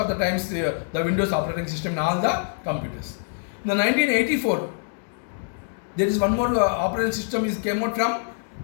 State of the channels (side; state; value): right; silent; digital silence